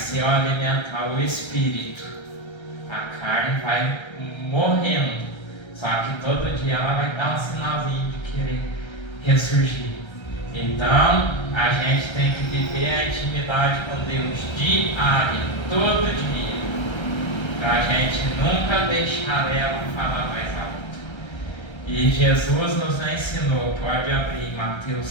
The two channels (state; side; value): late; right; 1.3 ms